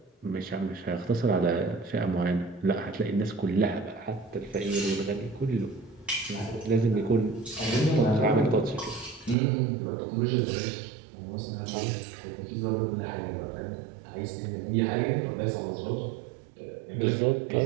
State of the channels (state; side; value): drops out; left; at 9.3 s